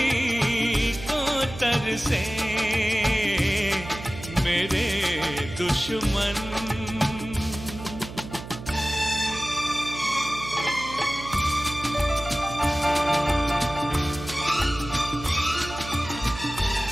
को तरसे मेरे दुश्मन।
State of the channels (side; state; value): right; noise; hum, 12 dB below the sound